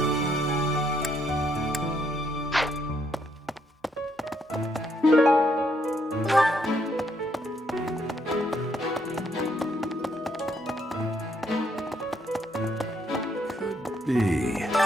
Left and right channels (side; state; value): both; normal; correlation 0.73